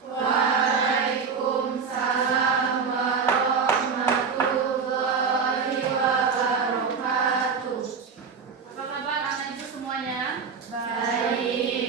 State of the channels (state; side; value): quieter; left; 5.7 dB